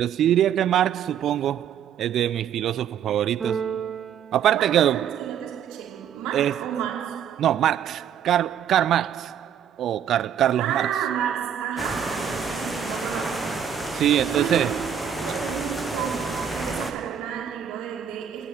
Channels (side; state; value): left; quieter; 9.0 dB